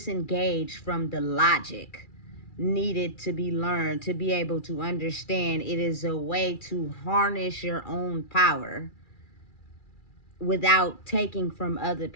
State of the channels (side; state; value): right; late; 2.4 ms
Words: from the logic needed to be learned to be able to understand it is a way to harness your own power without taking from other